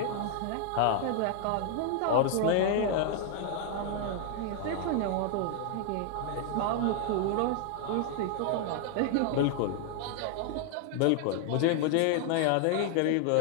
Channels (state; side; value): different; both; correlation 0.00